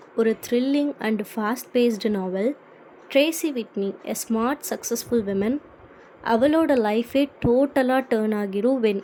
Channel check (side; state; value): both; identical; correlation 1.00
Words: ஒரு thrilling and fast based novel. Tracy Whitney, a smart successful women. அவளோட லைஃபே டோட்டலாக டேர்ன் ஆகிரும் வென்